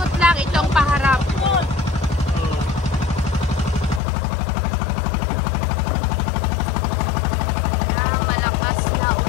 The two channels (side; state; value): right; drops out; at 4.0 s